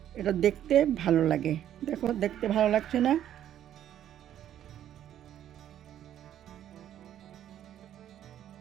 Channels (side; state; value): left; quieter; 11.0 dB